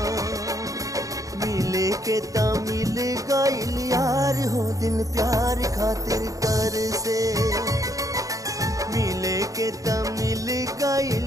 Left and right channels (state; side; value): late; left; 0.16 ms